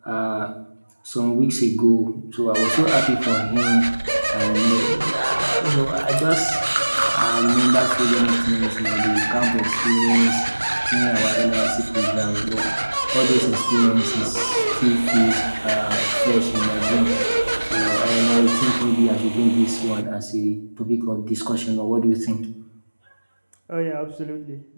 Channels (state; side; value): inverted; both; correlation -1.00